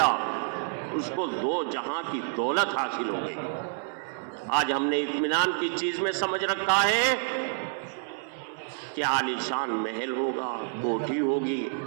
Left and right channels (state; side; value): silent; left; 59 dB below the other